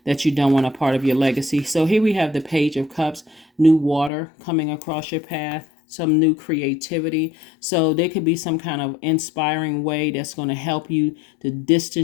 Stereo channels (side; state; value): right; drops out; at 4.1 s